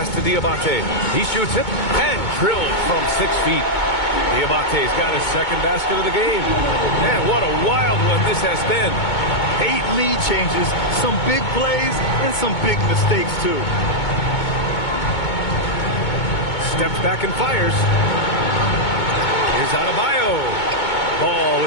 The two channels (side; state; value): right; late; 2.2 ms